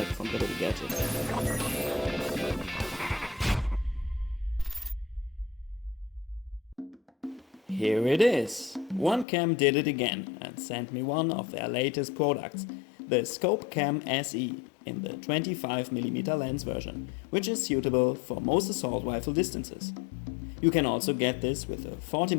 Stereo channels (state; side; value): drops out; right; at 9.2 s